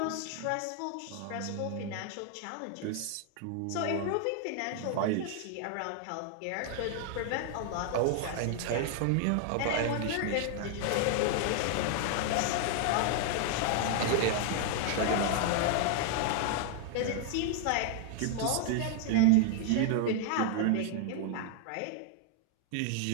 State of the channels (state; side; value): different; both; correlation 0.00